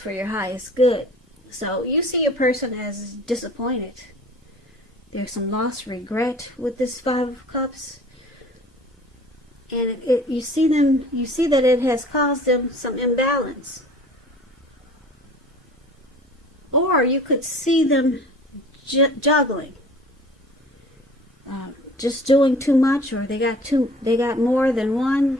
your highest good. So you see your person as disappointed. There's some lost regret with this Five of Cups. And you see that it has caused them some imbalance. Or you could see them juggling. Just doing too much, or they got more than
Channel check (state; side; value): normal; both; correlation 0.46